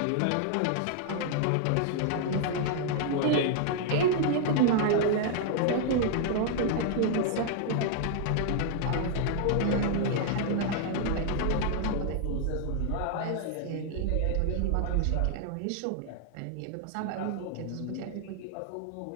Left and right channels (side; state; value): both; different; correlation 0.00